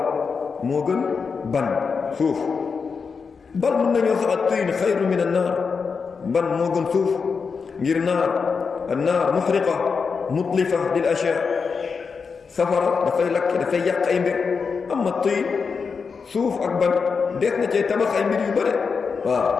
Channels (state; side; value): quieter; right; 5.4 dB